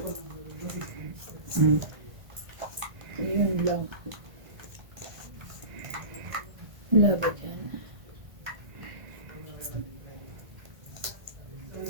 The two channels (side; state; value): left; late; 1.5 ms